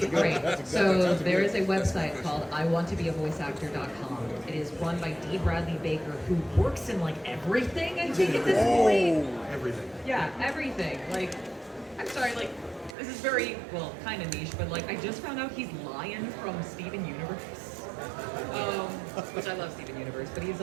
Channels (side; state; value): left; drops out; at 13.0 s